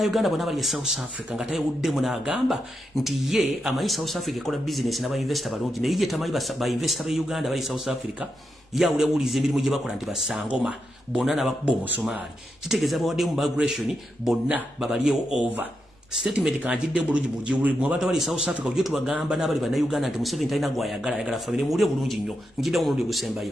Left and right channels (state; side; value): normal; both; correlation 0.85